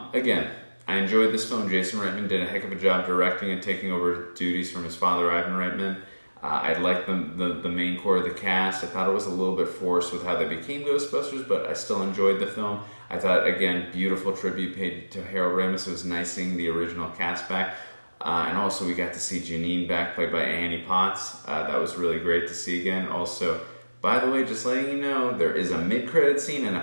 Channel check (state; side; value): inverted; both; correlation -1.00